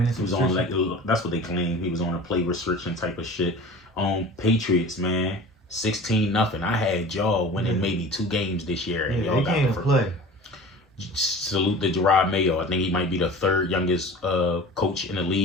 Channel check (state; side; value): normal; both; correlation 0.39